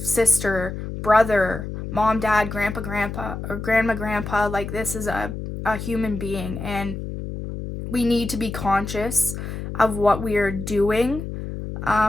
brother, mom, dad, grandpa, or grandma. Like, this is a human being, and we need to be conscious of what we are doing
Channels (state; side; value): noise; left; hum, 7 dB below the sound